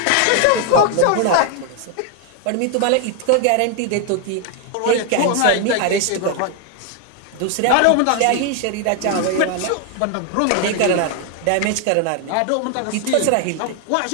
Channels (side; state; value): both; different; correlation 0.00